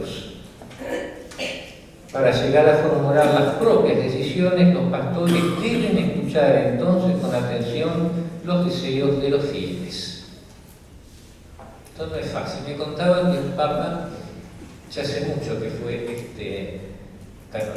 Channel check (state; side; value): identical; both; correlation 1.00